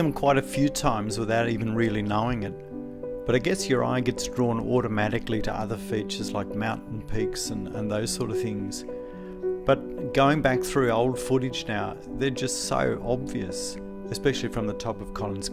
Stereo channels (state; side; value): identical; both; correlation 1.00